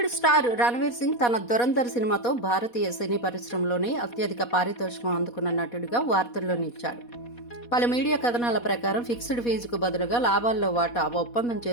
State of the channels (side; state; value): right; late; 4.2 ms